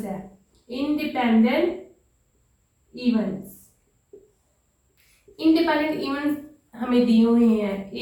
है। इंडिपेंडेंट इवेंट्स, इंडिपेंडेंट इवेंट्स हमें दिए हुए हैं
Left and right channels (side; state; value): both; identical; correlation 1.00